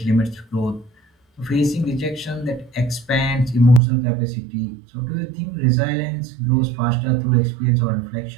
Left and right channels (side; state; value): left; drops out; at 3.8 s